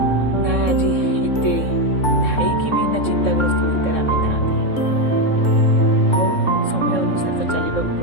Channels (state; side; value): late; right; 3.6 ms